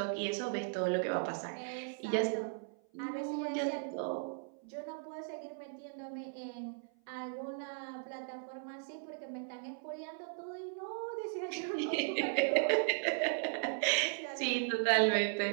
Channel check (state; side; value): silent; left; 53 dB below the other